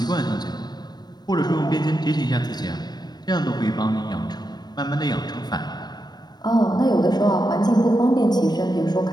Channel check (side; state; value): right; late; 0.20 ms